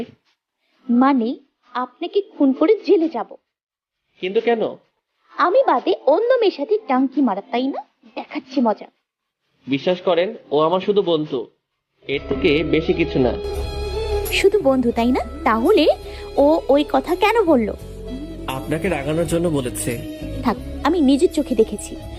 মানে আপনাকে খুন করে জেলে যাব। কিন্তু কেন? আমি বাদে অন্য মেয়ের সাথে টাঙ্কি মারা, তাই না? দেখাচ্ছি মজা। বিশ্বাস করেন, ও আমার শুধু বন্ধু, এর থেকে বেশি কিছু না। শুধু বন্ধু, তাই না? তাহলে ও ওই কথা কেন বললো? আপনাকে রাগানোর জন্য বলেছে। থাক, আমি নিজের চোখে দেখেছি,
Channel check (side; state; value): both; identical; correlation 1.00